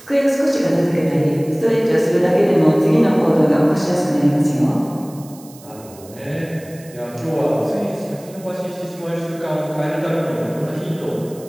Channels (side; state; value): right; noise; hiss, 22 dB below the sound